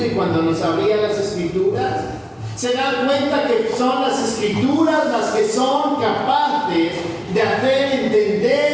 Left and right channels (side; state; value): both; identical; correlation 1.00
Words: y cuando nos abría las Escrituras. Se dan cuenta que son las Escrituras las que son capaces de hacer